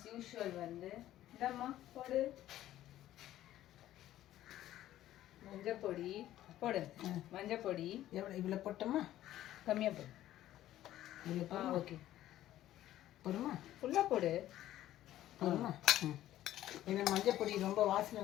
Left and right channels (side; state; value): right; quieter; 13.5 dB